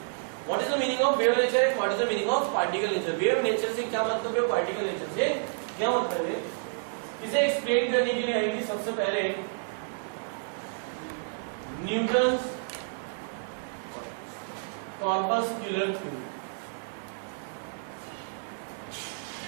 What is the meaning of wave nature and what is the meaning of particle nature? Wave nature से क्या मतलब है, पार्टिकल नेचर से क्या मतलब है, इसे एक्सप्लेन करने के लिए आएंगे सबसे पहले न्यूटन्स कॉर्पस्कुलर थ्योरी।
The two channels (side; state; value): left; silent; digital silence